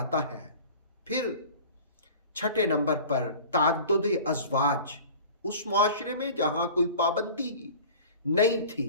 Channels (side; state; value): both; inverted; correlation -0.41